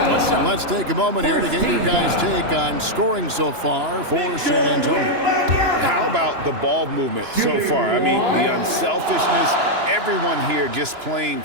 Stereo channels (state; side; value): late; left; 2.9 ms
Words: Let's take a moment here to get your guys' take on scoring so far for San Antonio. How about the ball movement so far? I mean, the unselfishness, everyone here just playing